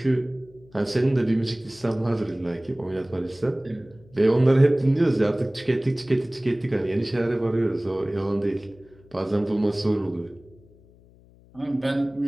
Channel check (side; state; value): left; noise; hum, 27 dB below the sound